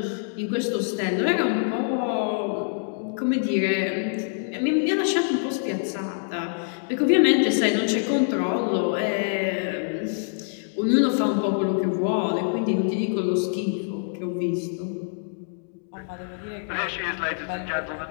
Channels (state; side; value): silent; right; digital silence